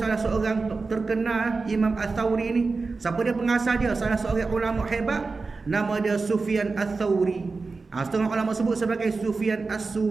seorang terkenal, Imam Al-Thawri ni. Siapa dia pengasas dia? Salah seorang ulama hebat, nama dia Sufyan Al-Thawri. Setengah ulama sebut sebagai Sufyan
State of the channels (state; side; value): quieter; left; 4.1 dB